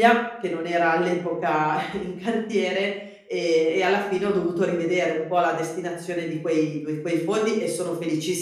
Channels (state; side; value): identical; both; correlation 1.00